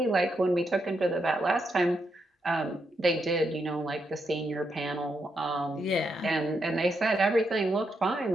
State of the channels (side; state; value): both; normal; correlation 0.81